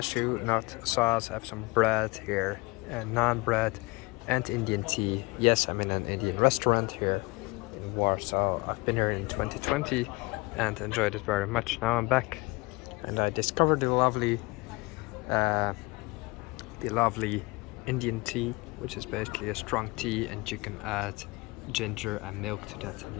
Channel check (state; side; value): quieter; right; 25.0 dB